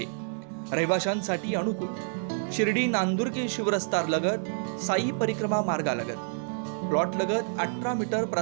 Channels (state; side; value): silent; left; digital silence